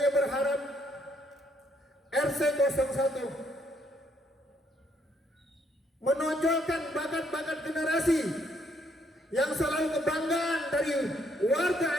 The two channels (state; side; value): normal; both; correlation 0.71